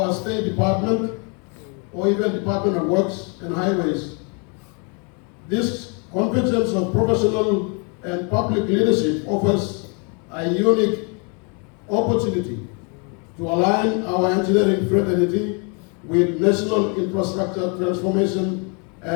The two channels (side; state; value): right; quieter; 35.5 dB